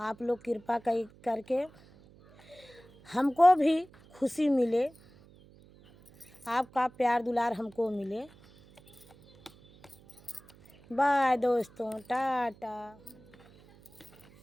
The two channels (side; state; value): right; noise; hum, 26 dB below the sound